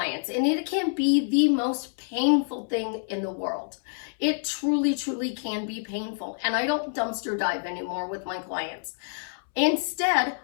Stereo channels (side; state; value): right; silent; 60 dB below the other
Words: and it can be the most painful thing in the world. It truly, truly can be painful. And I don't dumpster dive anymore with my clients. Instead,